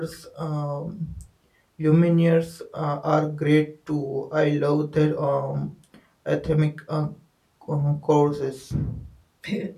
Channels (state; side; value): identical; both; correlation 1.00